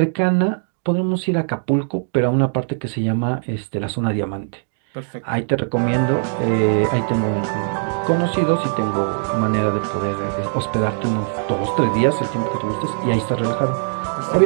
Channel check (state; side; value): silent; left; digital silence